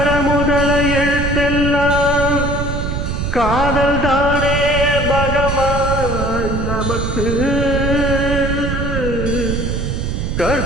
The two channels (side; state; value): right; noise; rumble, 2 dB below the sound